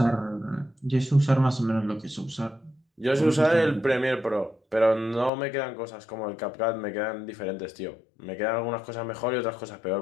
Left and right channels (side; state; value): right; drops out; at 5.3 s